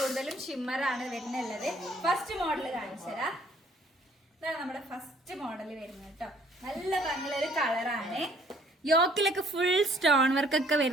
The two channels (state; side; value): normal; both; correlation 0.60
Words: ഷിമ്മർ ആണ് വരുന്നുള്ളത്. First model കാണിച്ചതാ. ഇതാണ് നമ്മുടെ ഫസ്റ്റ് മോഡൽ വരുന്നത് കേട്ടോ. നല്ല ഭംഗിയുള്ള കളറാണ്. യോക്കിലൊക്കെ ഫുൾ സ്റ്റോൺ വർക്ക് ഒക്കെ